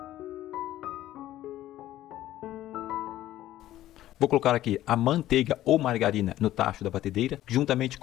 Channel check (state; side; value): quieter; right; 14.0 dB